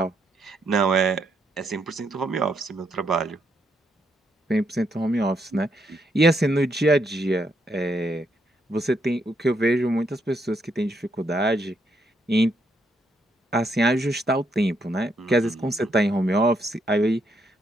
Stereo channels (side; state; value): both; normal; correlation 0.76